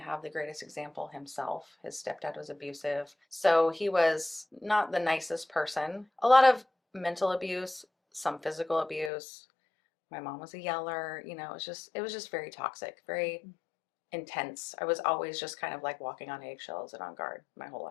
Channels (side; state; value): right; drops out; at 9.1 s